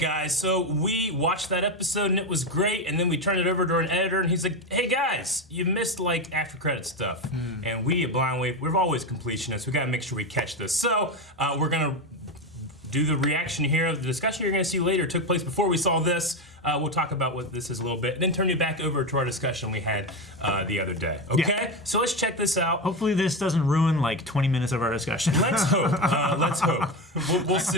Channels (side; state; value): both; normal; correlation 0.15